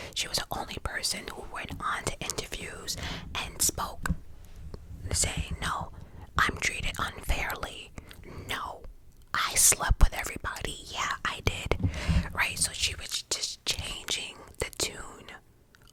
She was the only person who went on to interviews and spoke, saying, no, I'm treated unfairly. No, I slept with everybody. Yeah, I did. Right? So she was just changing the tune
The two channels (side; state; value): both; identical; correlation 1.00